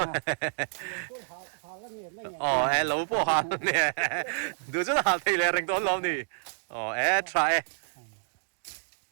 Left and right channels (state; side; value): silent; left; digital silence